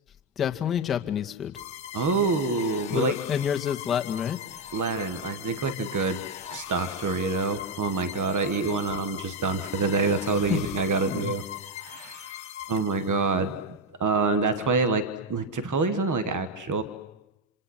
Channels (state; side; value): normal; both; correlation 0.05